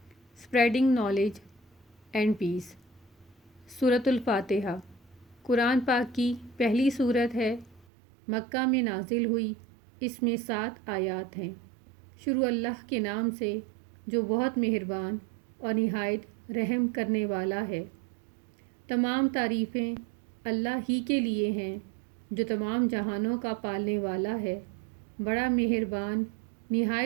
اسپریڈنگ نالج اینڈ پیس۔ سورۃ الفاتحہ قرآن پاک کی پہلی سورت ہے، مکہ میں نازل ہوئی۔ اس میں 7 آیات ہیں۔ شروع اللہ کے نام سے جو بہت مہربان اور نہایت رحم کرنے والا ہے۔ تمام تعریفیں اللہ ہی کے لیے ہیں جو تمام جہانوں کا پالنے والا ہے، بڑا مہربان،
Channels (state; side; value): drops out; left; at 7.9 s